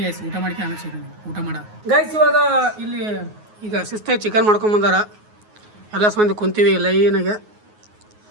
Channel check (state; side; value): late; left; 9.5 ms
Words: ಗೈಸ್, ಊಟ ಮಾಡ್ಕೊಂಡು ಆಮೇಲೆ ಸಿಗೋಣ ಊಟ ಮಾಡ ಗೈಸ್. ಇವಾಗ ಇಲ್ಲಿ ಈಗ ಶಿಸ್ತಾಗಿ ಚಿಕನ್ ಮಾಡ್ಕೊಂಬಂದಾರ, ಎಲ್ಲ ಮಂದಿ ಕುಂತೀವಿ ಲೈನಾಗೆ.